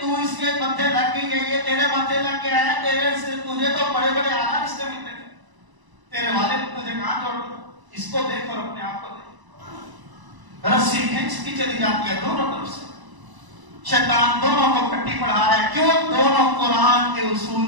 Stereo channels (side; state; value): left; late; 1.0 ms